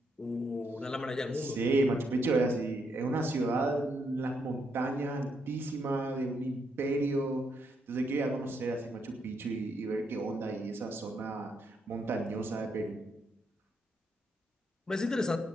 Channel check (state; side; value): normal; both; correlation 0.77